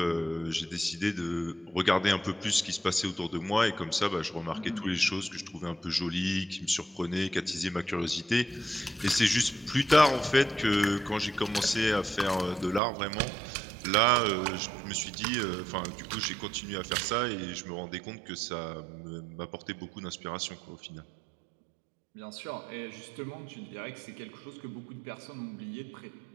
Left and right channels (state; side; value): drops out; left; at 12.8 s